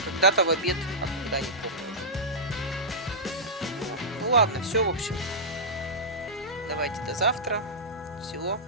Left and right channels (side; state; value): both; normal; correlation -0.14